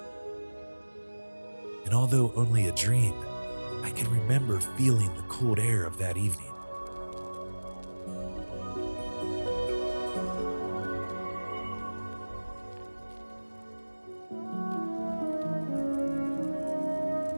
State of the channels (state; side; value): inverted; both; correlation -1.00